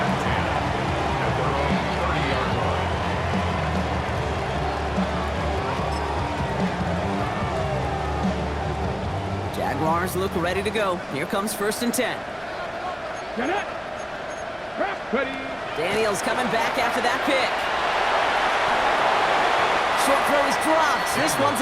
Jaguars look ready to go. Here comes first and 10. Get it. Ready. Daniels coming back after that pick. Short throw is dropped. This one's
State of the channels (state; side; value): identical; both; correlation 1.00